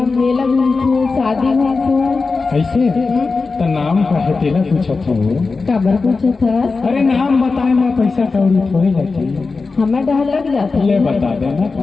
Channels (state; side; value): quieter; right; 4.2 dB